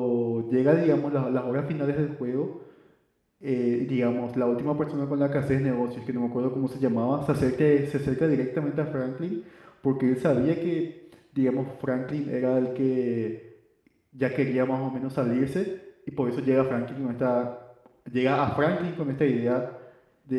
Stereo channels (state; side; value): identical; both; correlation 1.00